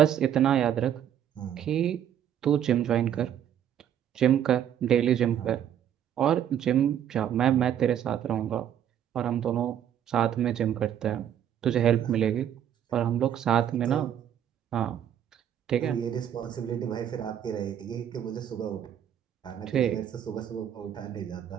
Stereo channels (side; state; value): left; quieter; 9.9 dB